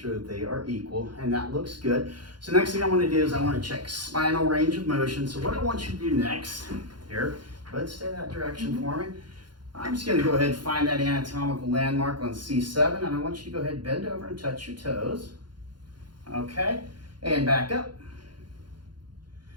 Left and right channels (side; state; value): left; late; 0.71 ms